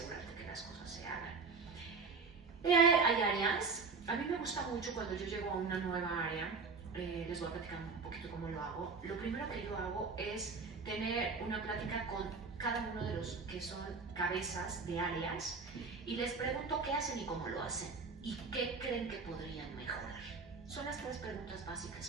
que las cosas se hagan. Hay áreas A mí me gusta mucho cuando yo llego a una nueva área, les voy a platicar un poquito cómo lo hago. Lo primero que yo hago es tener una plática con cada uno de los que son cabezas de áreas y les pregunto qué hacen y cómo lo hacen y qué creen que podrían mejorar. Son las 3 preguntas básicas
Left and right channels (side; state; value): left; quieter; 4.7 dB